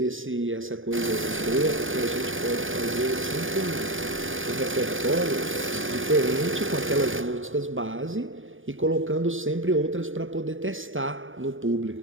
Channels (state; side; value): late; left; 0.58 ms